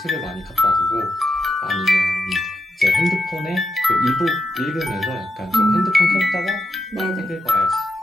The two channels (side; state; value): both; normal; correlation 0.84